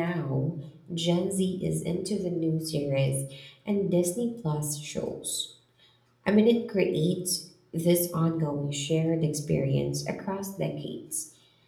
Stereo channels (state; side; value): identical; both; correlation 1.00